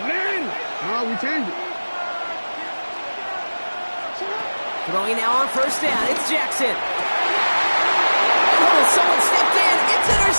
We changed it. Throwing now on 1st down. It's Jackson. Oh, someone stepped in. It's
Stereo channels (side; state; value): both; inverted; correlation -1.00